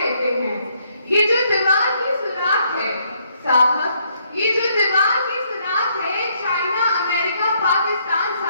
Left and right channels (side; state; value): both; inverted; correlation -0.71